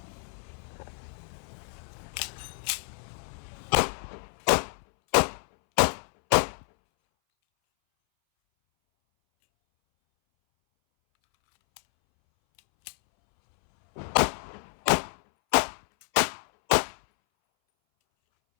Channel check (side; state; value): right; silent; 59 dB below the other